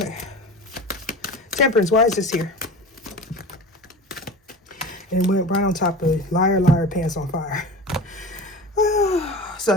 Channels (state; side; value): normal; both; correlation 0.33